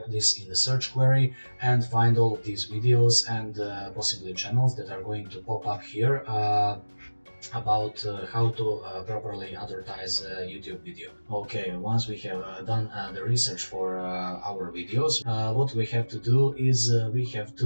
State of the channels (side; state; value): both; inverted; correlation -1.00